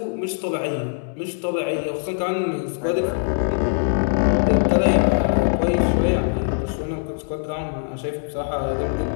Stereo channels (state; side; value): silent; right; digital silence